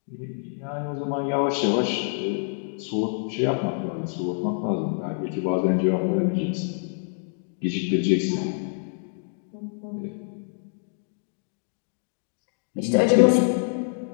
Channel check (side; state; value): right; silent; 59 dB below the other